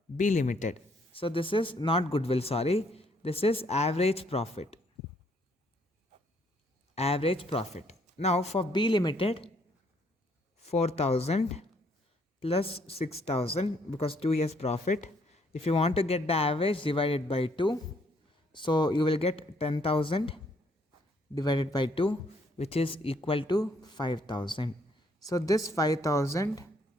B Limited. So this is not goodwill, sorry, this is average profit. Average profit. Now for B Limited, 4,000 plus 6,000 because 2 years profit. If you want to get the average, divided by 2. So you will get 10,000 divided by 2, which is equal to 5,000. So this 5,000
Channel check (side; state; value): both; normal; correlation 0.68